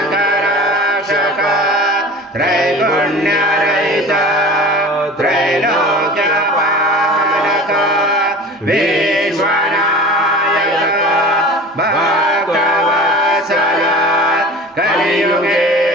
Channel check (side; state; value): both; normal; correlation 0.37